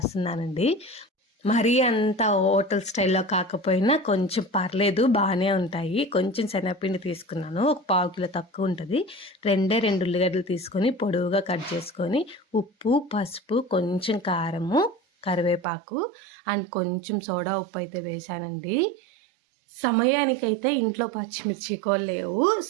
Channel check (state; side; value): drops out; left; at 15.7 s